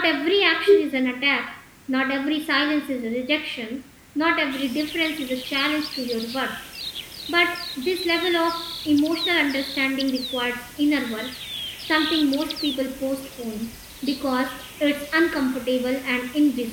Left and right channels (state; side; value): identical; both; correlation 1.00